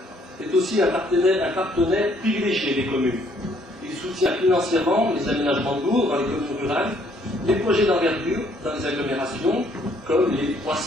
est aussi un partenaire privilégié des communes. Il soutient financièrement les aménagements lourds dans les communes rurales, les projets d'envergure dans les agglomérations, comme les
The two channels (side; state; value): both; normal; correlation 0.65